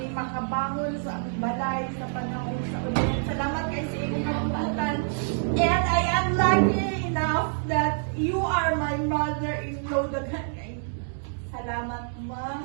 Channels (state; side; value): silent; left; digital silence